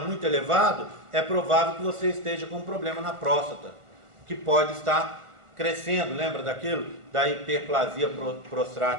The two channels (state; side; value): late; left; 1.4 ms